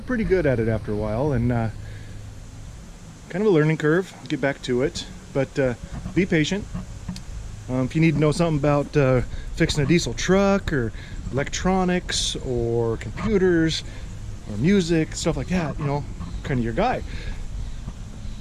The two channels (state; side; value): identical; both; correlation 1.00